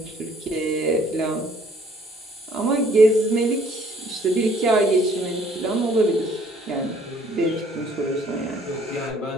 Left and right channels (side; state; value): both; normal; correlation 0.60